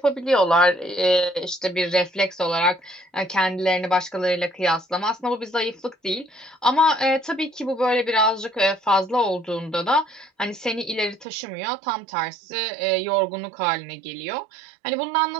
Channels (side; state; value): left; drops out; at 11.2 s